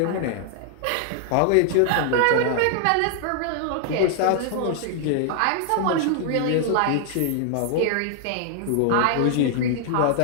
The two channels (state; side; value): different; both; correlation 0.00